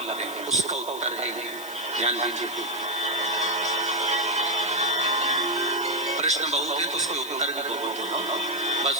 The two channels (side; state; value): left; noise; hiss, 14 dB below the sound